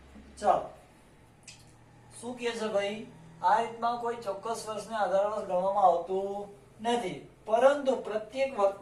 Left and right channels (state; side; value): identical; both; correlation 1.00